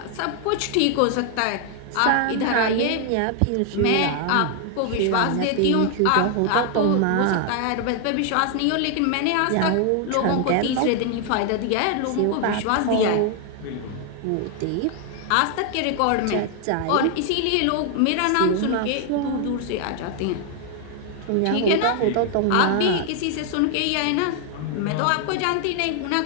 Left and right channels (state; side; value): different; both; correlation 0.00